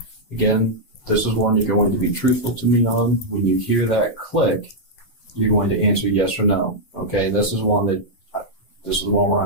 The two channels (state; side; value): late; right; 8.0 ms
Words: Again, this is one you're going to be truthful to me on. When you hear that click, you're going to answer yes or no. Okay, this is one where